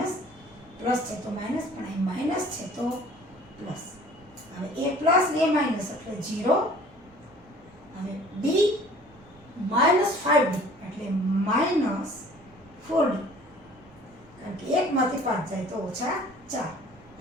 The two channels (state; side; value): normal; both; correlation 0.50